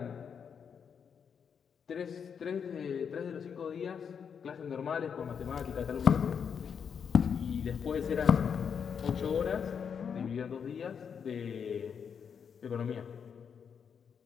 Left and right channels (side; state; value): right; quieter; 7.0 dB